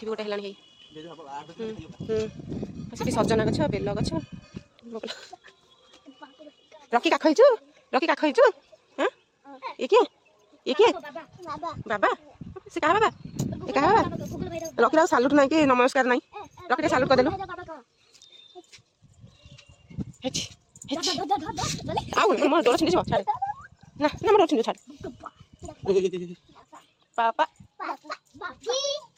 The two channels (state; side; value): identical; both; correlation 1.00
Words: गोटे है सजना गछ बेल गछ रखी काखईचु हाँ ये किए बाबा से कहा बाबा ये कहा बाबा रखी सालुट ना कि नमस्कार ना रखी सालुट करदेलु मोर डोर छिंदी छाड़े ना ना मोर छिंदी छाड़े पापा